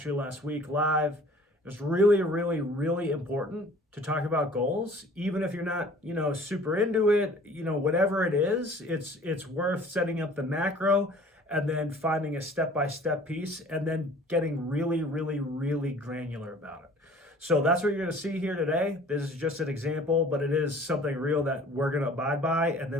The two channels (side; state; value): both; normal; correlation 0.50